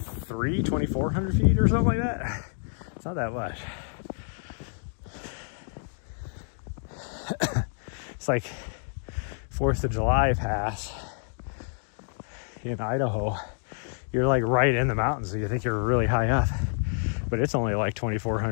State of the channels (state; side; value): silent; right; digital silence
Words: feet or something like that. It's not that much. It's like 4th of July Pass in Idaho. You're like right in the mountains, so you think you're really high up, but it's only like